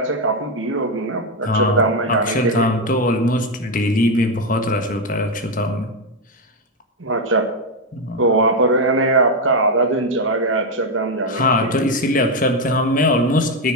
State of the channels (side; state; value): both; normal; correlation 0.06